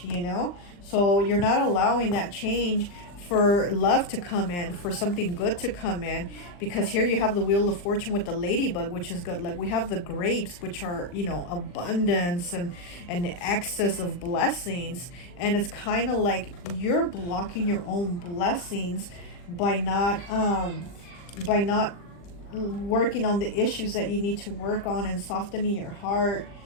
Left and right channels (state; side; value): late; right; 40 ms